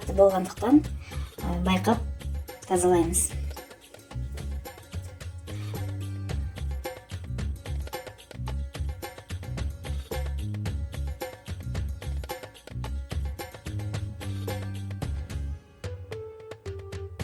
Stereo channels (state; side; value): identical; both; correlation 1.00